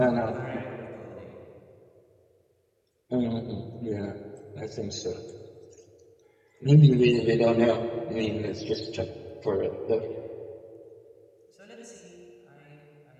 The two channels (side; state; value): both; identical; correlation 1.00